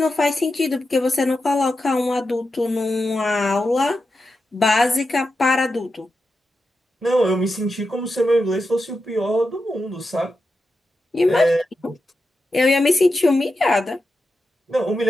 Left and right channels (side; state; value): both; normal; correlation 0.89